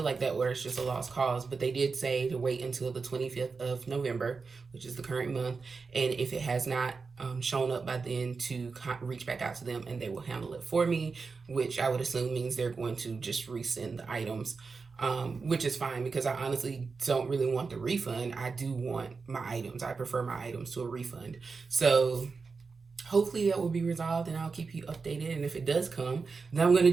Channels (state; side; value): quieter; left; 4.7 dB